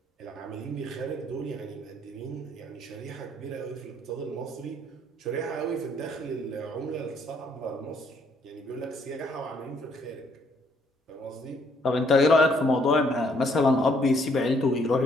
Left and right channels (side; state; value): both; normal; correlation 0.67